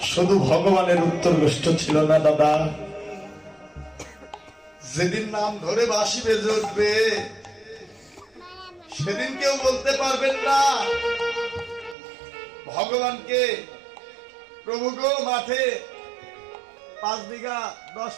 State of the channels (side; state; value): left; drops out; at 12.0 s